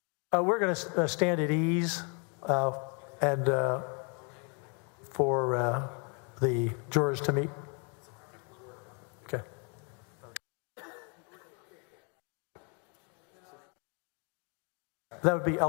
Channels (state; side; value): quieter; right; 35.9 dB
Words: We're going to stand at ease and for the jurors to meet. Okay. That would be